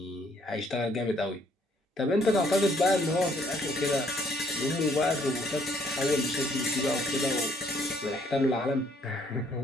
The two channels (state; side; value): normal; both; correlation 0.66